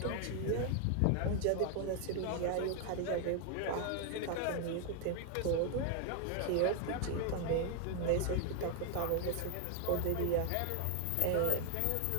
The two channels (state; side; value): different; both; correlation 0.00